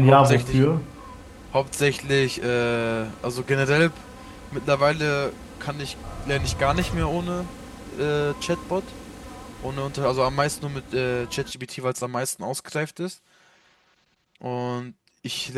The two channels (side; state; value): both; identical; correlation 1.00